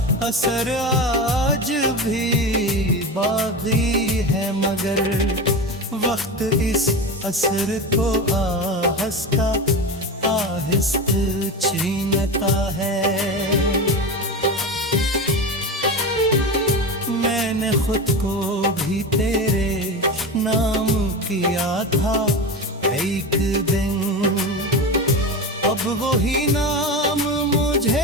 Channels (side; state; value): both; normal; correlation 0.24